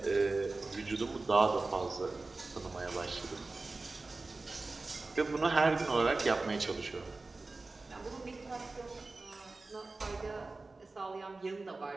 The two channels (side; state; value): left; quieter; 3.5 dB